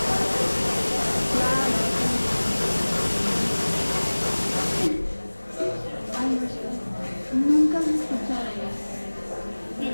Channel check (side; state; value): both; inverted; correlation -1.00